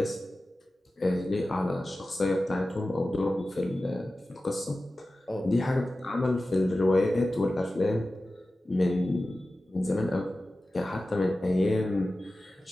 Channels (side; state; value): both; normal; correlation 0.95